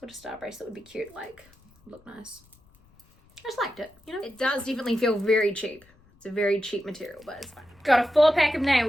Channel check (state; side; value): noise; left; rumble, 30 dB below the sound